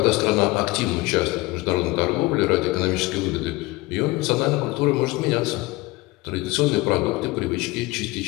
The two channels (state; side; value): quieter; right; 21.1 dB